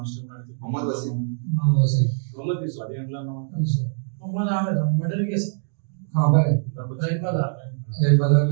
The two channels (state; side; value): silent; left; digital silence